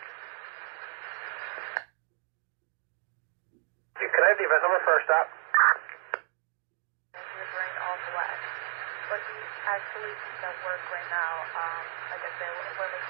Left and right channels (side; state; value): left; silent; 57 dB below the other